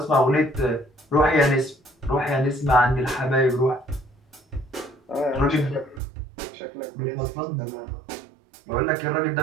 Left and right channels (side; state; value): left; drops out; at 6.0 s